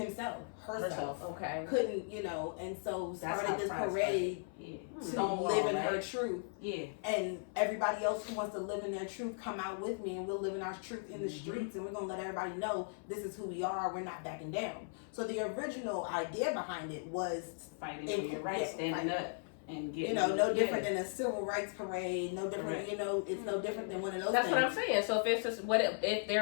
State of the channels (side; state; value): right; silent; 53 dB below the other